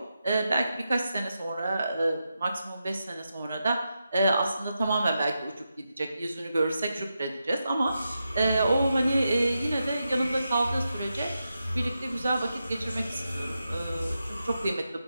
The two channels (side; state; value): both; inverted; correlation -0.88